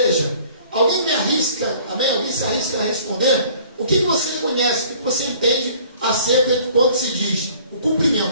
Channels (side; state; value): both; inverted; correlation -0.53